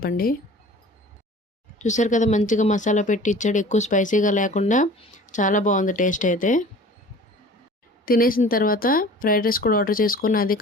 చూసారు కదా, మంచిగా మసాలా పెట్టి ఇచ్చాడు. ఎక్కువ స్పైసీగా లేకుండా చాలా బాగుంది టేస్ట్ అయితే. తినేసిన తర్వాత ఫ్రైడ్ రైస్ కూడా ఆర్డర్ చేసుకుని అది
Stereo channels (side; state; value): both; normal; correlation 0.44